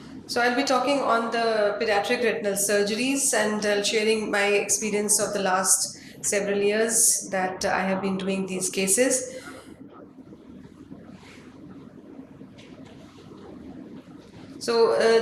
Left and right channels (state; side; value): identical; both; correlation 1.00